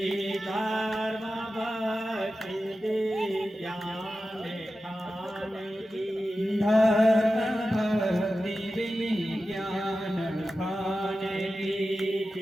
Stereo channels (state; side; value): normal; both; correlation 0.93